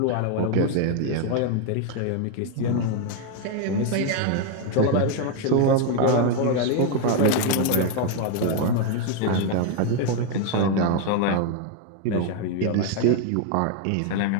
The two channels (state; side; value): different; both; correlation 0.01